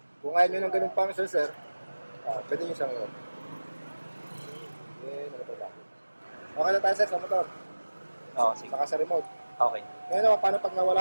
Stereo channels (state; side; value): inverted; both; correlation -1.00